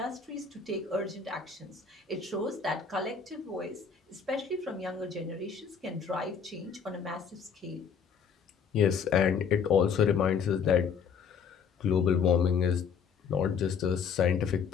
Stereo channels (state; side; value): quieter; right; 6.4 dB